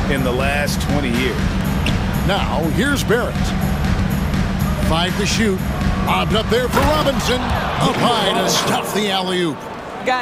in the last 20 years. Now, here's Barrett. 5 to shoot. Lobbed up there for Robinson. Up high to stuff the alley-oop.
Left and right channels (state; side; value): identical; both; correlation 1.00